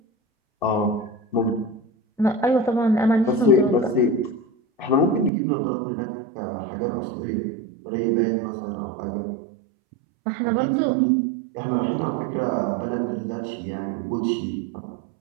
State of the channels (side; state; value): left; drops out; at 5.3 s